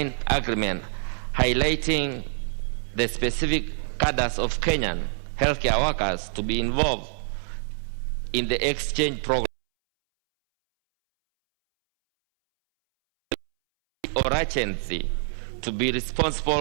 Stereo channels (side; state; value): left; silent; 61 dB below the other